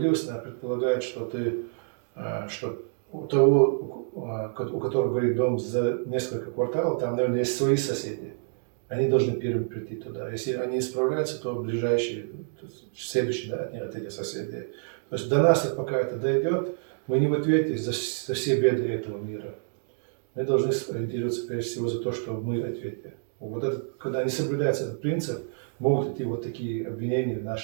она предполагает, что у того, у которого горит дом за несколько кварталов, там, наверное, есть свои соседи. Они должны первыми прийти туда. Если они не справляются, то ближайшие, следующие от этих соседей. То есть до нас, пока это дойдет, мы не в ответе за все беды этого мира. Мы должны ориентироваться прежде всего за то, что мы в ответе. Вот это, когда не соблюдается этот принцип, могут идти вот такие обвинения в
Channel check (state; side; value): silent; left; digital silence